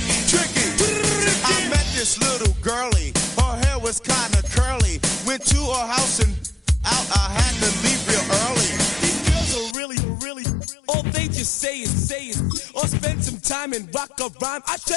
Tricky. I met this little girlie. Her hair was kind of curly. went to her house and out. I had to leave real early. These girls are really, all they just say is, or spend some time and rock a rhyme. I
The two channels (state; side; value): drops out; right; at 9.8 s